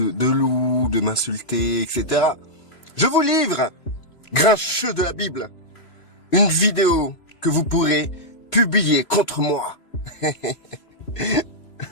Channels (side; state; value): right; late; 3.0 ms